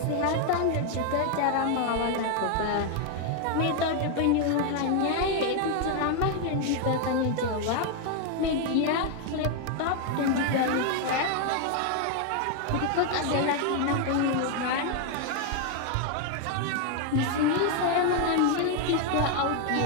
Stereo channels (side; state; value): both; different; correlation 0.01